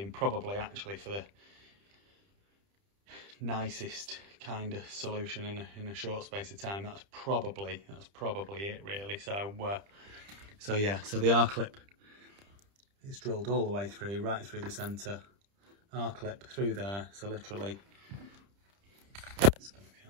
and probably actually for the nicest kind of solution in a short space of time, that's probably it, really. So yeah, so the R-clip is drilled all the way through, right through the centre, R-clip through there. So literally, it's going to be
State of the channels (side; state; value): left; late; 30 ms